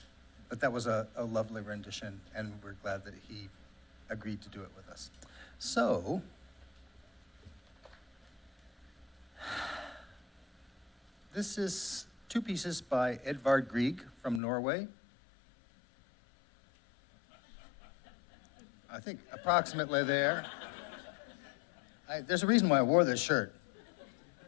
that was a lovely rendition, and we're glad that he agreed to do it with us. So, this is two pieces by Edvard Grieg from Norway. I think approximately there. There's a reason why I wore this shirt.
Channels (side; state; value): right; drops out; at 14.4 s